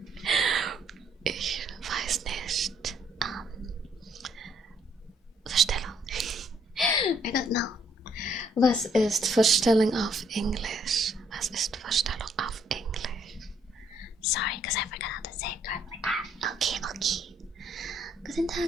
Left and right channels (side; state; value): both; normal; correlation 0.68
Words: Ich weiß nicht. Vorstellung. I don't know. Was ist Vorstellung auf Englisch? Was ist Vorstellung auf Englisch? Sorry, because I forgot how to say it correctly. Okay. Guten